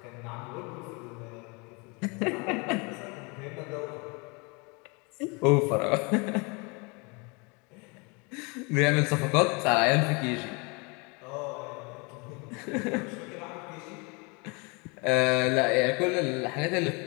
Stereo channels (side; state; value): right; quieter; 30.0 dB